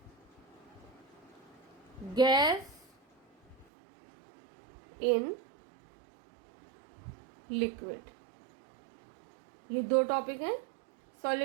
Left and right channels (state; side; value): drops out; left; at 3.7 s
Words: gas in liquid। ये दो टॉपिक हैं,